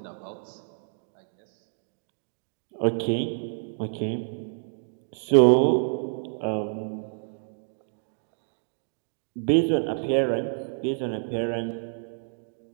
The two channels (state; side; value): silent; left; digital silence